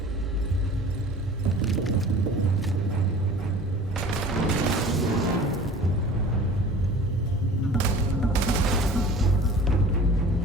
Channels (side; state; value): both; normal; correlation 0.43